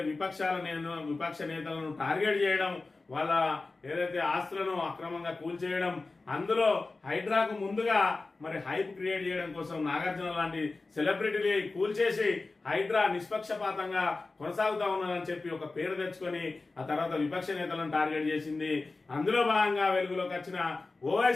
విపక్ష నేతలను టార్గెట్ చేయడం, వాళ్ళ ఏదైతే ఆస్తులను అక్రమంగా కూల్చేయడం, అందులో హైడ్రాకు ముందుగా మరి హైప్ క్రియేట్ చేయడం కోసం నాగార్జున లాంటి సెలబ్రిటీని కూల్చేసి హైడ్రా నిష్పక్షపాతంగా కొనసాగుతా ఉన్నదని చెప్పి ఒక పేరు తెచ్చుకొని ఆ తర్వాత విపక్ష నేతలను టార్గెట్ చేసింది. అందులో భాగంగా వెలుగులోకి వచ్చిన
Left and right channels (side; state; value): right; quieter; 3.6 dB